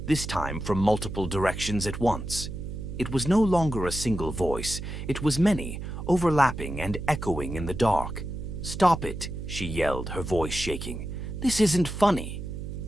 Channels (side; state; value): right; noise; hum, 7 dB below the sound